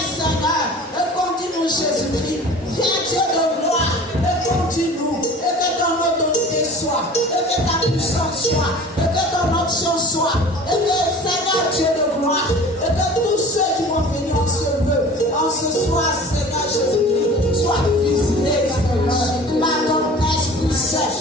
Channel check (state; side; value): normal; both; correlation 0.42